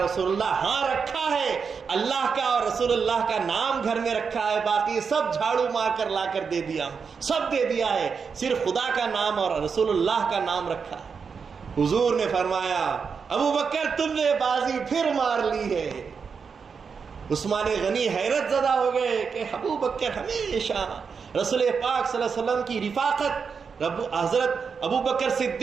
اللہ ہاں رکھا ہے, اللہ کا اور رسول اللہ کا نام گھر میں رکھا ہے, باقی سب جھاڑو مار کر لا کر دے دیا, سب دے دیا ہے, صرف خدا کا نام اور رسول اللہ کا نام رکھا ہے. حضور نے فرمایا ابو بکر تم نے بازی پھر مار لی ہے. عثمان غنی حیرت زدہ ہو گئے کہ ابو بکر ہمیشہ رسول پاک صلی اللہ علیہ وسلم کی رفاقت, حضرت ابو بکر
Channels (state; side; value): quieter; left; 5.8 dB